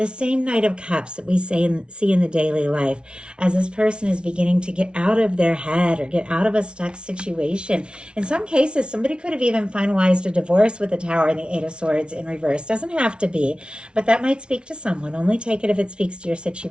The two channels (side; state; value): left; late; 0.057 ms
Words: same Knight of Cups that we see in the daily life as this person is beginning to get out of their head or get out of a stuck situation. In some cases, somebody could have even finalized a divorce with the Tower and the Eight of Swords in reverse. Doesn't have to be, but that might speak to someone. Only take it if it speaks to your